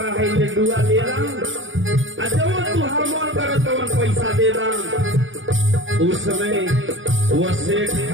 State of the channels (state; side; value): late; left; 0.56 ms